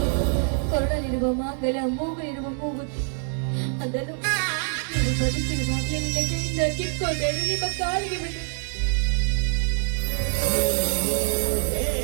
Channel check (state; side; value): silent; left; 56 dB below the other